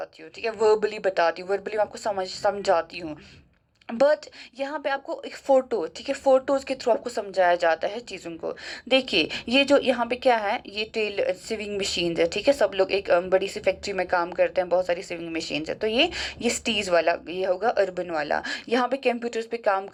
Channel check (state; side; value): identical; both; correlation 1.00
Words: हूँ, ठीक है, वर्बली बताती हूँ, वर्बली मैं आपको समझाती हूँ। बट यहाँ पे आपको एक फ़ोटो, ठीक है, फ़ोटोज़ के थ्रू आपको समझाया जाता है चीज़ों को। देखिए ये जो यहाँ पे क्या है, ये टेल सिविंग मशीन्स है, ठीक है। सब लोग एक बड़ी सी फैक्ट्री में काम करते हैं, बहुत सारी सिविंग मशीन्स है। तो ये स्टीज वाला ये होगा अर्बन वाला। यहाँ पे कंप्यूटर्स पे काम